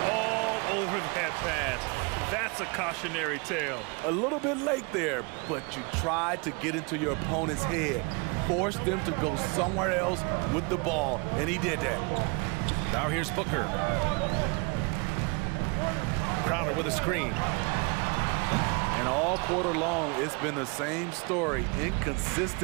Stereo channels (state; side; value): quieter; left; 31.0 dB